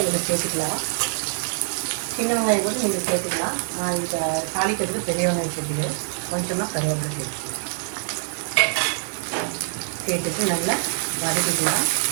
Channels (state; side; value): silent; left; 62 dB below the other